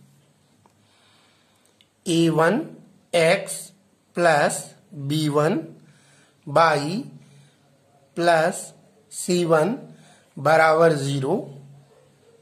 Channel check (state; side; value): identical; both; correlation 1.00